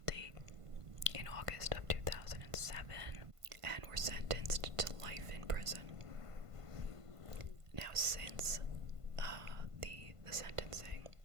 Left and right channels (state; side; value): late; left; 1.5 ms